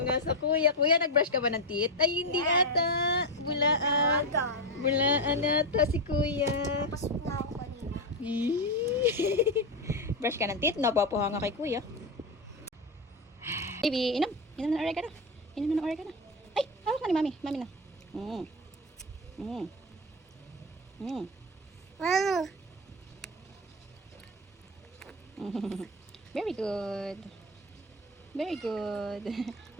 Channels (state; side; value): normal; both; correlation 0.11